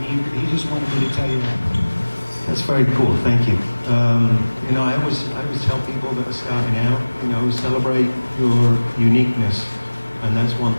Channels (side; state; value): both; inverted; correlation -1.00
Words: he just wanted me to tell you that. That's very cool. Thank you. I always tell people that are starting out, celebrate your uniqueness, and that's one